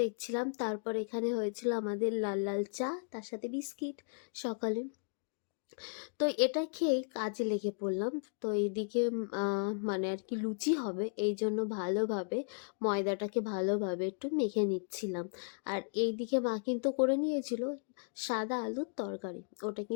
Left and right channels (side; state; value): right; silent; digital silence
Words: দেখছিলাম। তারপর এখানে হয়েছিল আমাদের লাল লাল চা, তার সাথে বিস্কিট সকালে। তো এটা খেয়েই কাজে লেগে পড়লাম। তো এইদিকে মানে আর কি লুচি হবে, এই জন্য ভালোভাবে ময়দাটাকে ভালোভাবে একটু মেখে নিচ্ছিলাম। আর এইদিকে মা কিন্তু করে নিয়েছিল সাদা আলুর তরকারি, ওটা